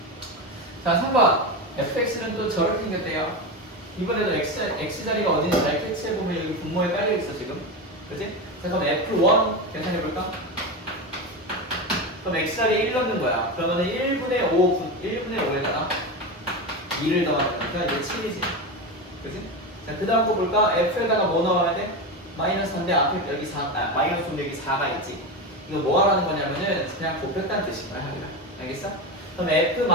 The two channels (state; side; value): normal; both; correlation 0.18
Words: 자, 3번 fx는 또 저렇게 생겼대요. 이번에도 x자리가 어딘지 잘 캐치해보면 여기 분모에 깔려있어 지금. 그치? 자, 그럼 f1 계산해볼까? 그럼 x자리에 1 넣는 거야. 그러면 1분의 5에다가 2를 더하니까 이제 7이지. 그치? 자, 그 다음 거 볼까? f에다가 뭐 넣어야 돼? 마이너스 3인데 앞에 여기 4, 마이너스 5인데 여기 4가 있지. 이거 뭐 하라는 거냐면은 그냥 곱했다는 뜻인 거야, 하기가. 알겠어? 그럼